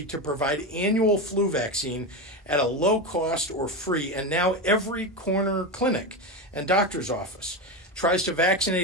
to provide annual flu vaccine at a low cost or free, and now every corner clinic and doctor's office tries to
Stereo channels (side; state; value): both; normal; correlation 0.17